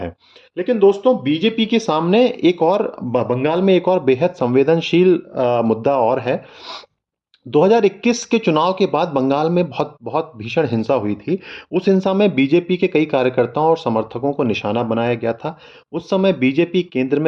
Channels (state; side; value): identical; both; correlation 1.00